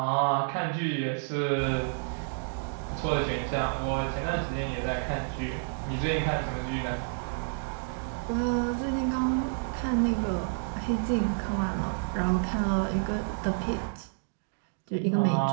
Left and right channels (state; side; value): silent; left; digital silence